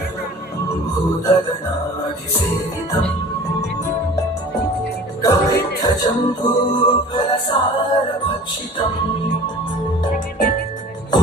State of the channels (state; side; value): normal; both; correlation 0.43